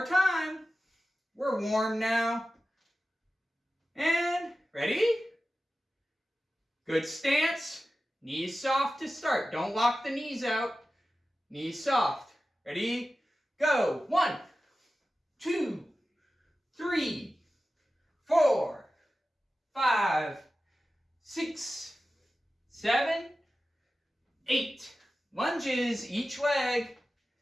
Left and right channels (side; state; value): both; normal; correlation 0.94